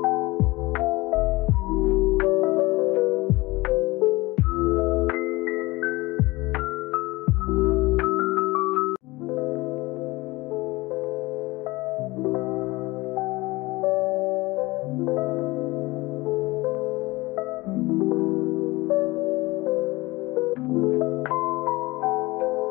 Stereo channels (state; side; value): quieter; right; 21.5 dB